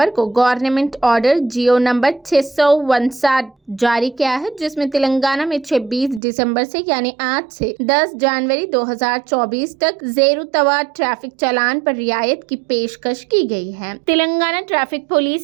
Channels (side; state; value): left; drops out; at 6.2 s